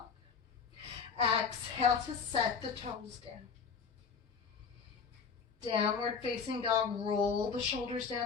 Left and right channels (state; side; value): quieter; right; 5.9 dB